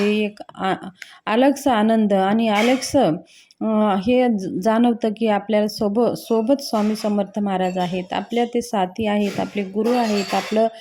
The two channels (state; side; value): identical; both; correlation 1.00